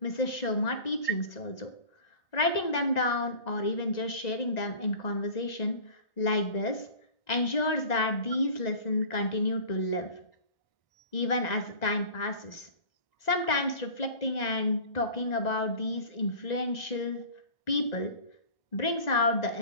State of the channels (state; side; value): late; right; 1.9 ms